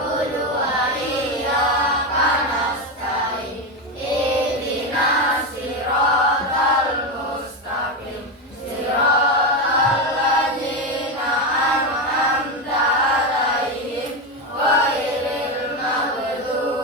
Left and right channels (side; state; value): both; normal; correlation 0.13